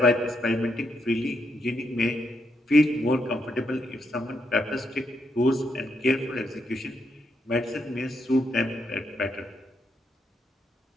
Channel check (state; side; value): normal; both; correlation 0.79